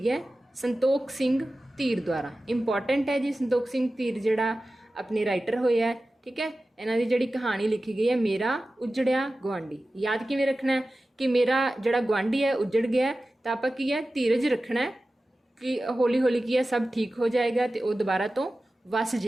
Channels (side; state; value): both; normal; correlation 0.95